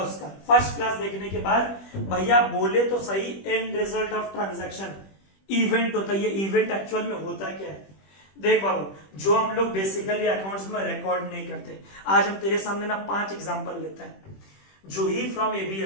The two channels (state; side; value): late; right; 21 ms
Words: उसका फर्स्ट क्लास देखने के बाद, भैया बोले तो सही and result of transaction event होता है। ये इवेंट एक्चुअल में होता क्या है? देख बाबू, जो हम लोग बेसिकली अकाउंट्स में रिकॉर्ड नहीं करते, आज हम तेरे सामने ना 5 एग्जांपल लेते हैं। जो ही फ्रॉम